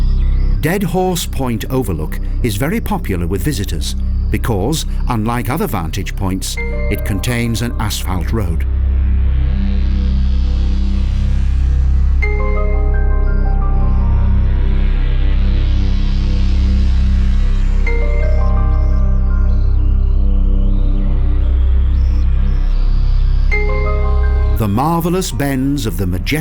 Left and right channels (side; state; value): both; identical; correlation 1.00